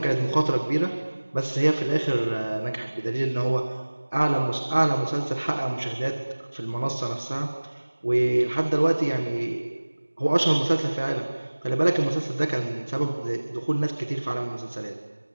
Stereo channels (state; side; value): inverted; both; correlation -1.00